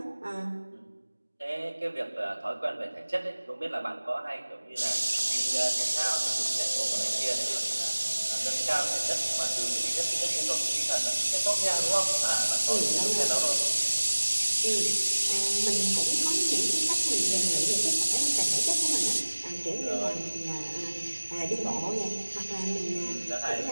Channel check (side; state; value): both; inverted; correlation -1.00